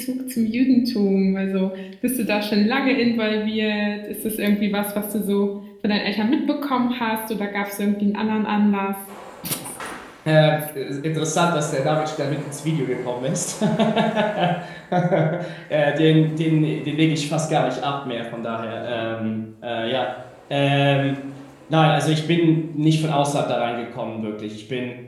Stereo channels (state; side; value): identical; both; correlation 1.00